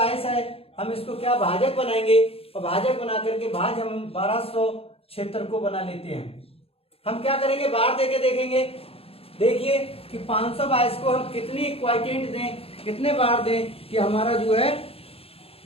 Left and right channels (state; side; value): late; right; 0.28 ms